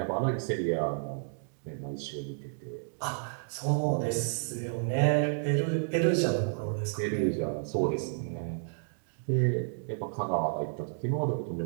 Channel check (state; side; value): silent; left; digital silence